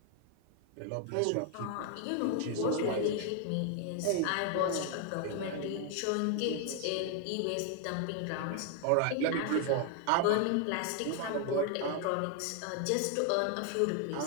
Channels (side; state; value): both; different; correlation 0.00